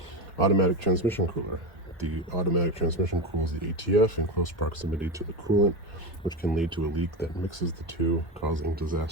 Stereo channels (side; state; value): both; normal; correlation 0.18